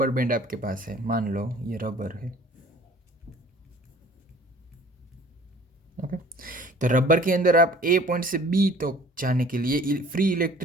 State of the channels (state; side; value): normal; both; correlation 0.51